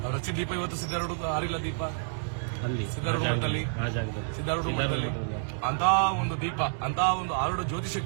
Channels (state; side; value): silent; left; 59 dB below the other